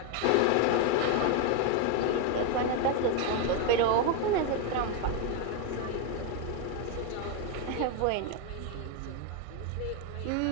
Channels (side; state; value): both; different; correlation 0.01